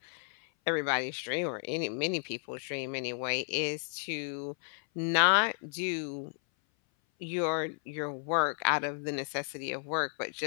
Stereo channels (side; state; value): right; silent; 56 dB below the other